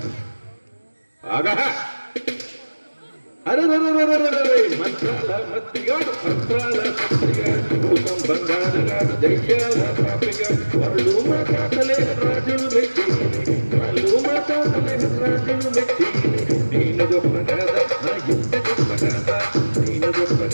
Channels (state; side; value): inverted; both; correlation -1.00